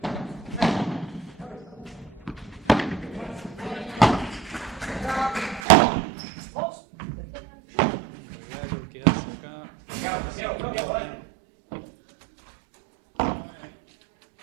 Un regalo que hace acá y se equivoca.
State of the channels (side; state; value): left; drops out; at 5.6 s